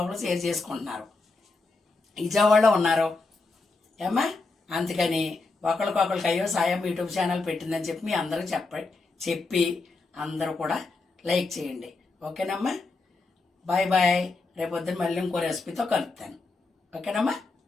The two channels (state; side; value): quieter; right; 3.7 dB